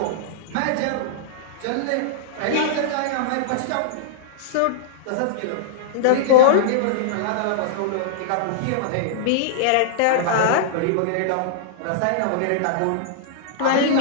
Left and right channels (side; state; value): both; different; correlation -0.02